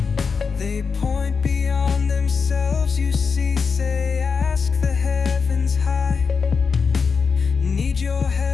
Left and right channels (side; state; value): right; quieter; 5.4 dB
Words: They point beyond themselves, you see, say, ask the heavens high. Need your